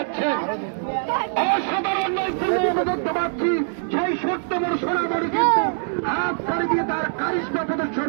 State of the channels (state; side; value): silent; left; digital silence